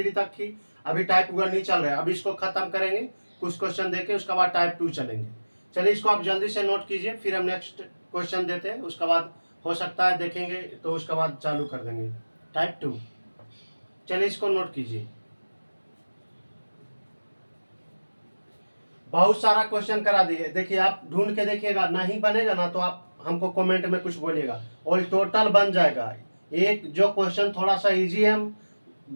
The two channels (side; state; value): both; inverted; correlation -1.00